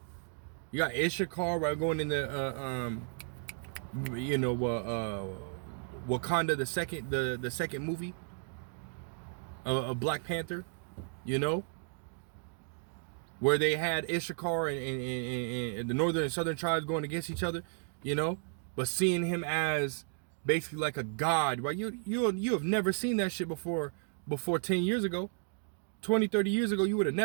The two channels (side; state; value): left; silent; 55 dB below the other